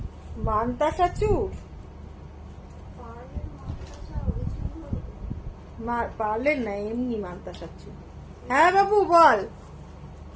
মানতাসা চূড়, পারলেন না, এমনি মানতাসা চূড়। হ্যাঁ বাবু বল,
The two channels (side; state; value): both; identical; correlation 1.00